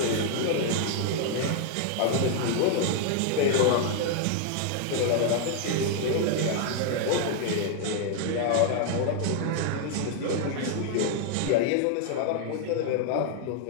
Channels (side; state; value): both; different; correlation 0.00